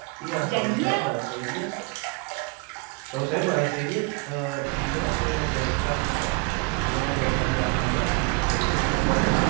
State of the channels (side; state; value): left; quieter; 31.5 dB